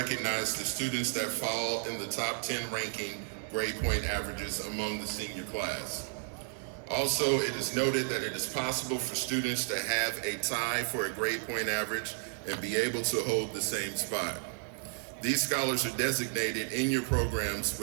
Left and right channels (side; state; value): left; silent; 56 dB below the other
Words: the students that fall in the top 10 ranking grade point averages among the senior class. Also, it is noted that it is possible for students to have a tie for a grade point average and be able to hold the same spot. These scholars are designated in your programs